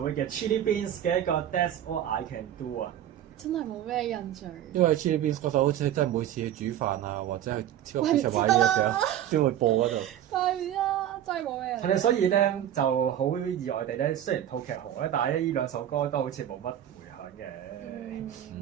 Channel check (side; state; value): left; quieter; 11.2 dB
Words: 會嘅 Chili Beans 嘅一個 That's All I Can Do 啊！真係冇咩印象。因為 Chili Beans 嗰首好似真係每次去煮飯啊，或者去超級市場買嘢嘅時候先會播嗰度。係啊，真係冇咩印象。係所以咧就好意外地咧，雖然套劇紅咧，但係呢兩首歌都好似冇乜迴響嘅。